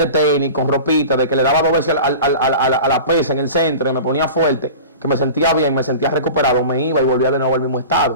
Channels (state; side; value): inverted; both; correlation -0.36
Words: tenis, con ropita, de que le daba 2 veces a la pesa en el centro, y me ponía fuerte, que me sentía bien, me sentía recuperado, me iba y volvía de nuevo al mismo